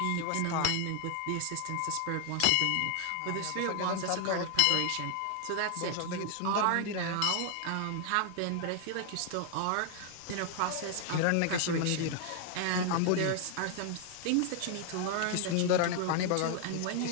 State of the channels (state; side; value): different; both; correlation 0.00